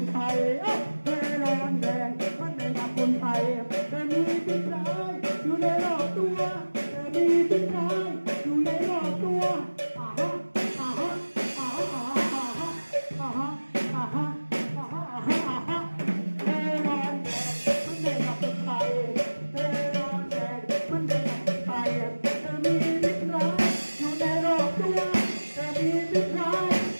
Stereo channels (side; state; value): both; inverted; correlation -1.00